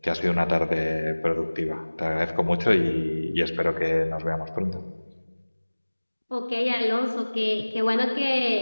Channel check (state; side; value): inverted; both; correlation -1.00